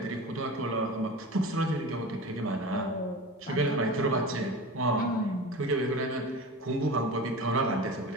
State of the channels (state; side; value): normal; both; correlation 0.32